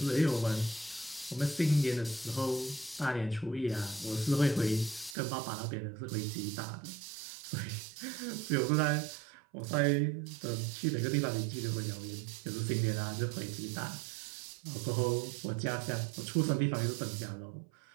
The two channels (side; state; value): left; drops out; at 5.2 s